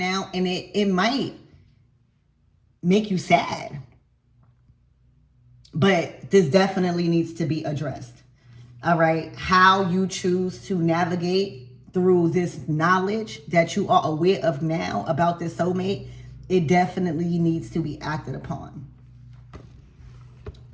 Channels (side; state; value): both; identical; correlation 1.00